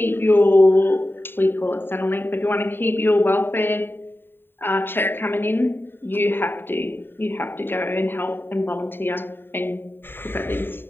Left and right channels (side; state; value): right; late; 0.10 ms